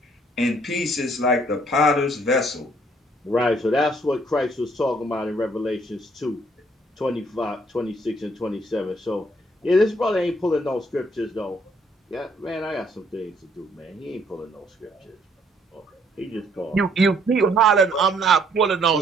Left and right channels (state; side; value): normal; both; correlation 0.65